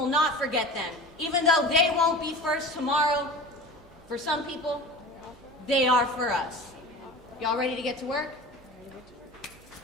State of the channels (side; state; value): right; noise; hum, 25 dB below the sound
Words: not forget them. Even though they won't be first tomorrow, for some people, they are for us. Y'all ready to get to work?